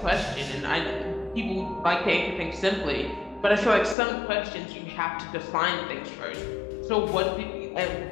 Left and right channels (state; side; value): drops out; right; at 4.0 s